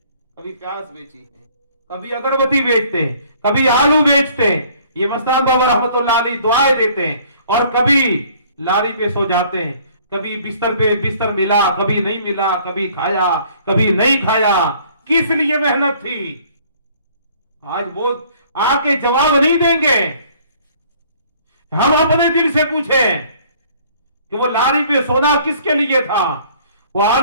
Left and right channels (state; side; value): inverted; both; correlation -0.57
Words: प्याज बेची है, कभी अगरबत्ती बेचते, कभी आलू बेचते। ये मस्तान बाबा रहमतुल्लाह अलैह दुआएं देते, और कभी लारी पे सो जाते हैं, कभी बिस्तर पे बिस्तर मिला, कभी नहीं मिला, कभी खाया, कभी नहीं खाया। किस लिए मेहनत थी? आज वो आके जवाब नहीं देंगे। हम अपने दिल से पूछें कि वो लारी पे सोना किसके लिए था, वो